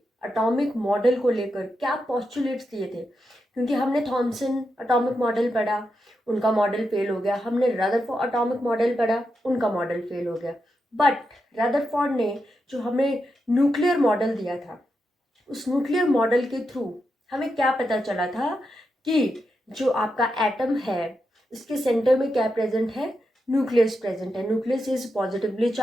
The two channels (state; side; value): normal; both; correlation 0.86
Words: एटॉमिक मॉडल को लेकर क्या पोस्टुलेट्स दिए थे। क्योंकि हमने थॉमसन एटॉमिक मॉडल पढ़ा, उनका मॉडल फेल हो गया। हमने रदरफोर्ड एटॉमिक मॉडल पढ़ा, उनका मॉडल फेल हो गया। बट रदरफोर्ड ने जो हमें न्यूक्लियर मॉडल दिया था, उस न्यूक्लियर मॉडल के थ्रू हमें क्या पता चला था कि जो आपका एटम है इसके सेंटर में क्या प्रेजेंट है, न्यूक्लियस प्रेजेंट है। Nucleus is positively